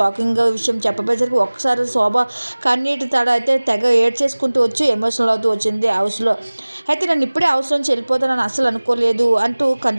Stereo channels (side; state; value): both; inverted; correlation -1.00